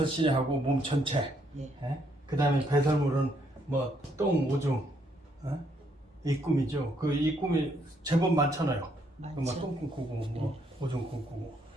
몸 전체. 그 다음에 배설물은 뭐 똥, 오줌, 이 꿈이죠. 이 꿈이 제법 많잖아요. 뭐 똥 꿈꾸고 뭐 오줌 꿈꾸고.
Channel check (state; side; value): normal; both; correlation 0.72